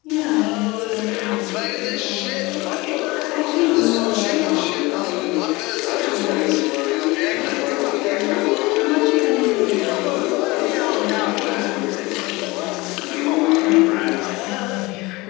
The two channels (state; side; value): quieter; right; 22.8 dB